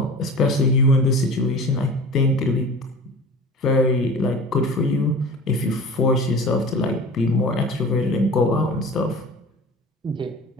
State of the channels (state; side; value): normal; both; correlation 0.38